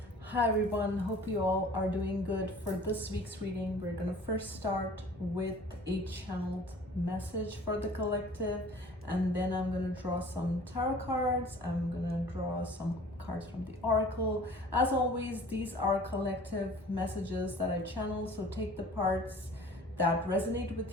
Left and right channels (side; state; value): both; normal; correlation 0.47